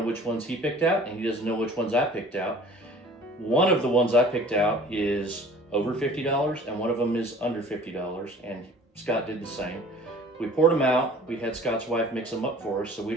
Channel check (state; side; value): normal; both; correlation 0.47